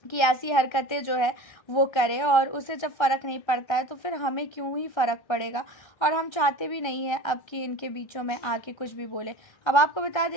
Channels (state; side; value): late; right; 1.3 ms